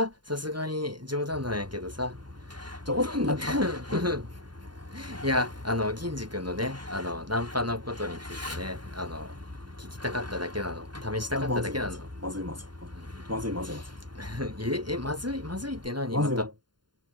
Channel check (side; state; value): left; late; 0.71 ms